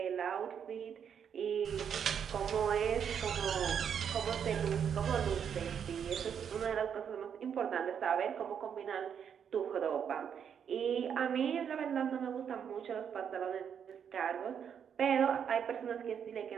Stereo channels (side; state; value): left; quieter; 7.9 dB